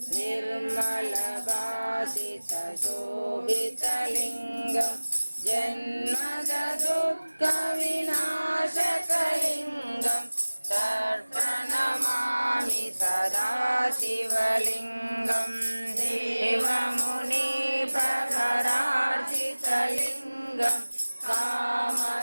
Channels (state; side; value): inverted; both; correlation -1.00